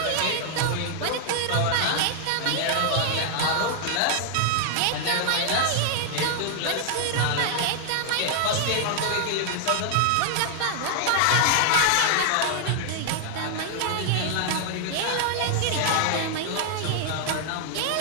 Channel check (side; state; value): both; different; correlation 0.00